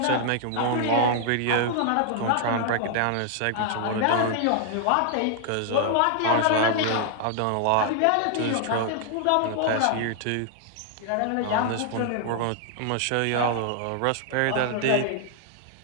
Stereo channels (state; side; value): different; both; correlation 0.00